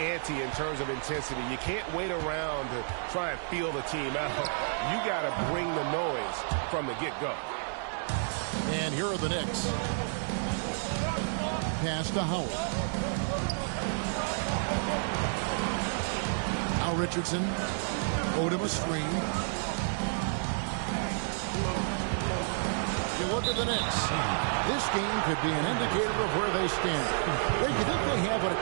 in terms of intensity. You can't wait around to try and feel the team out. You got to bring the noise from the get-go. And here are the Knicks. Pass to Howard. Now Richardson. Odom a screen. You look at the Knicks. This game could be an indicator of where they stand. Do you think they have what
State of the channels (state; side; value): silent; left; 57 dB below the other